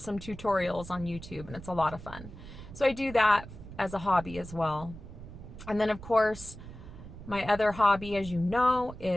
tutorials on YouTube, and it's a lot of fun. So I do that as a hobby as well. And then of course, my other hobby, as you know,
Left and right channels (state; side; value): noise; right; rumble, 14 dB below the sound